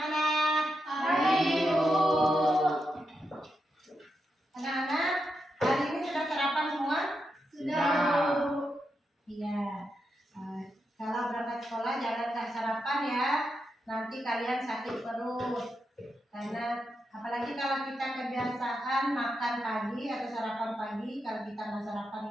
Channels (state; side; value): normal; both; correlation 0.85